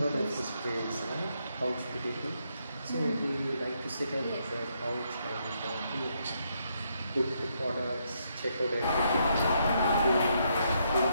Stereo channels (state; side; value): inverted; both; correlation -0.76